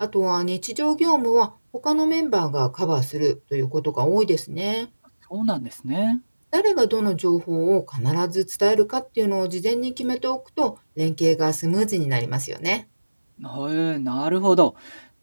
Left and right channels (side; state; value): both; inverted; correlation -1.00